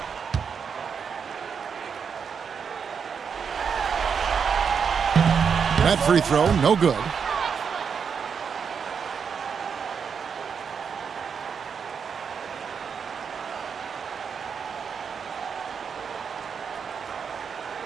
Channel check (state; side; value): quieter; left; 6.5 dB